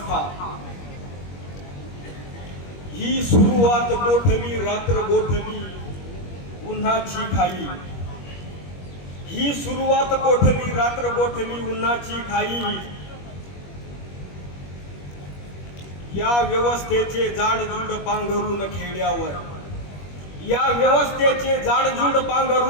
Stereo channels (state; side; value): late; right; 21 ms